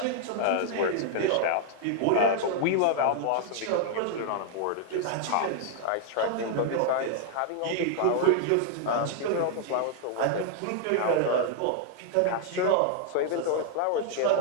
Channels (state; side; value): different; both; correlation 0.00